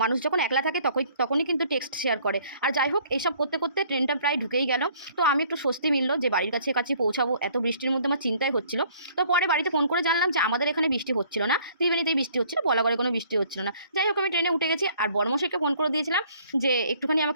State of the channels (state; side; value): inverted; both; correlation -0.58